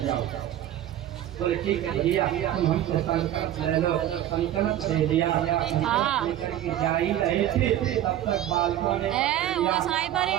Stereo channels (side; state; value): left; quieter; 12.2 dB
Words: जाओ। बोले ठीक है भैया तुम हमसे संकल्प ले लो। संकल्प दे दिया, लेकर के जा ही रहे थे तब तक बालकों ने